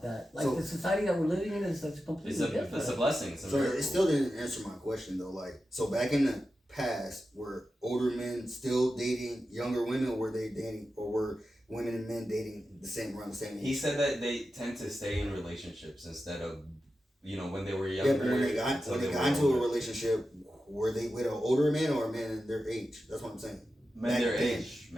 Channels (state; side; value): normal; both; correlation 0.91